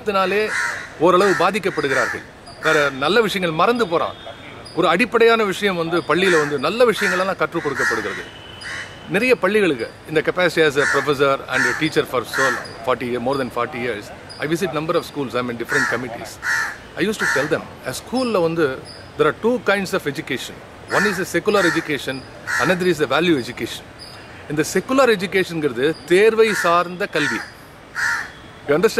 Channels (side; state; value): both; identical; correlation 1.00